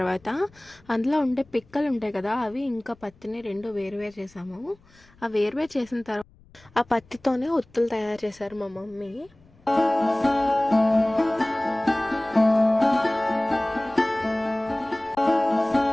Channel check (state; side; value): noise; left; rumble, 28 dB below the sound